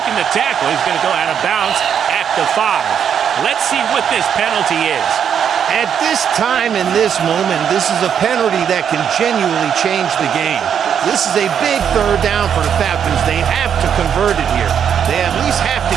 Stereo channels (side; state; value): left; quieter; 8.2 dB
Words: the tackle. He's going to go out of bounds at the 5. Let's see what this penalty is. At this time, in this moment, this is a penalty that can genuinely change the game. This is a big 3rd down for the Falcons. They have to convert it here. They at least have to